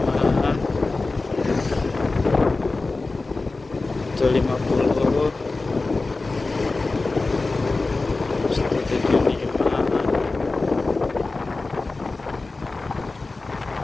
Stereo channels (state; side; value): quieter; right; 3.5 dB